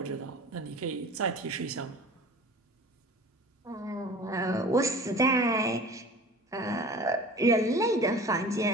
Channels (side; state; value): both; normal; correlation 0.41